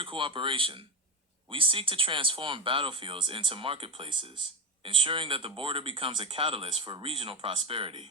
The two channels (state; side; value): normal; both; correlation 0.15